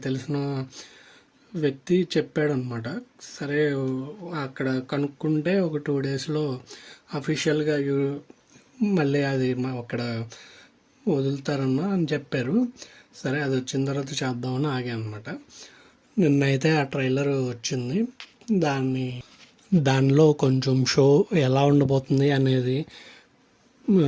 తెలిసిన వ్యక్తి చెప్పాడనమాట. సరే అక్కడ కనుక్కుంటే ఒక 2 డేస్లో అఫీషియల్గా మళ్ళీ అది అక్కడ వదులుతారన్నా అని చెప్పారు. సరే అది వచ్చిన తర్వాత చేద్దామని ఆగా అనమాట. నిన్నైతే ఆ ట్రైలర్ వచ్చింది. దానిలో కొంచెం షో ఎలా ఉండబోతుంది అనేది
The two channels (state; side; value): identical; both; correlation 1.00